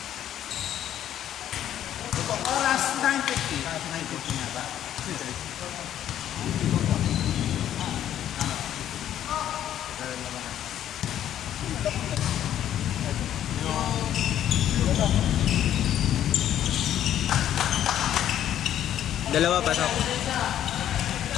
Itong oras, 9:50. 9:50 nga ba? Dalawa pasok.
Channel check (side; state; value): right; quieter; 11.1 dB